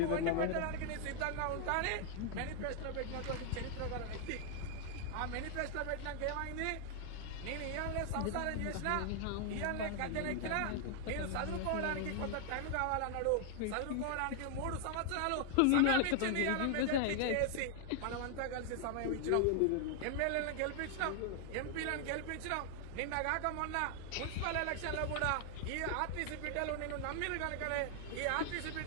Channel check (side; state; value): both; different; correlation 0.00